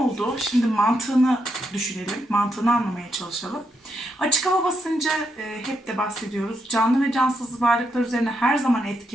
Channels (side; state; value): both; normal; correlation 0.81